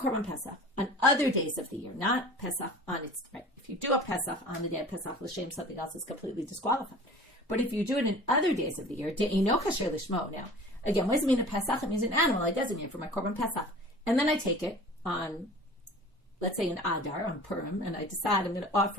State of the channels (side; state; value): both; normal; correlation 0.42